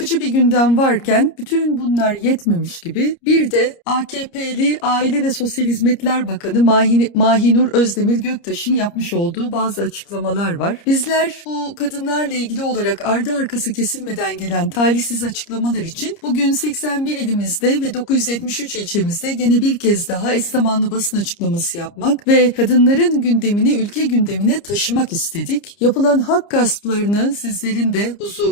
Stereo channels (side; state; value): right; late; 30 ms